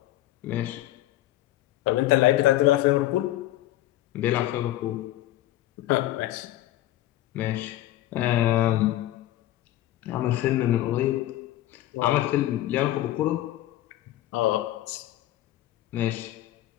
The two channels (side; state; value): right; quieter; 14.7 dB